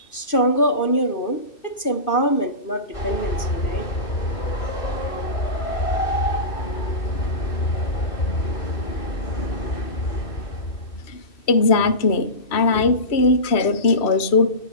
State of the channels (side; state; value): right; late; 2.6 ms